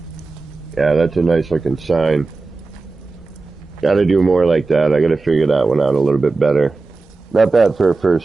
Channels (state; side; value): quieter; left; 3.7 dB